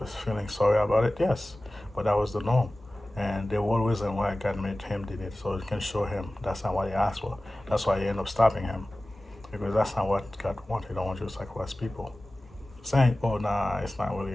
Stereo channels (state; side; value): normal; both; correlation 0.97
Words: feeling sorry about it? Yes, but that was the norm. And the whole reason why God made him did it, so it can show him that's not what he asked for. That's why he ended up stopping him, because that's not what God wanted. He don't want you to sacrifice people. Saying, oh, nah, it's not really